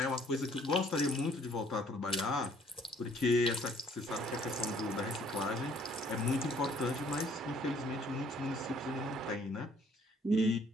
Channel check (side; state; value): both; normal; correlation 0.61